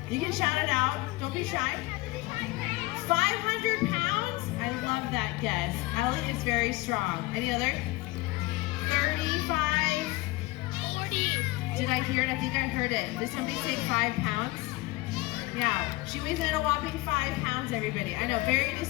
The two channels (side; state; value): right; quieter; 20.9 dB